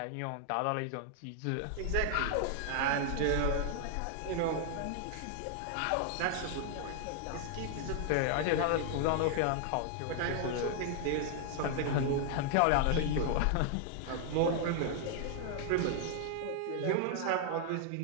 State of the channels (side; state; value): both; different; correlation 0.00